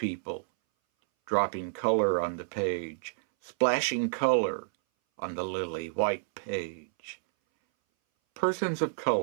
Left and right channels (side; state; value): left; silent; 58 dB below the other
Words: Dropping color on the page. Splashing color on the lily white page. Persons of